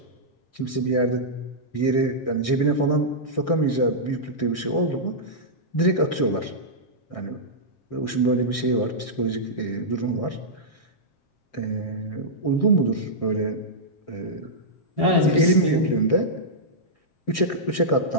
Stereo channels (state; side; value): late; right; 7.4 ms